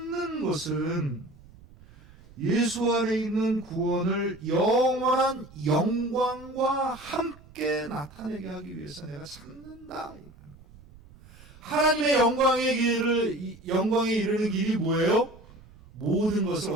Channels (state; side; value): noise; right; rumble, 23 dB below the sound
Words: 것은 예수 안에 있는 구원을 영원한 영광과 함께 나타내게 하기 위해서 내가 참는다. 하나님의 영광에 이르는 길이 뭐예요? 모든 것을